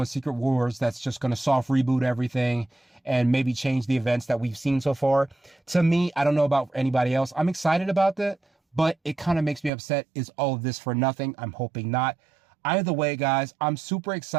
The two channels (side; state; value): left; drops out; at 9.7 s